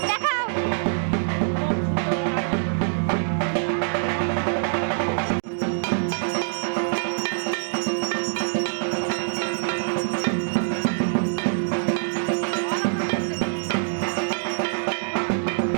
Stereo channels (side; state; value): left; silent; digital silence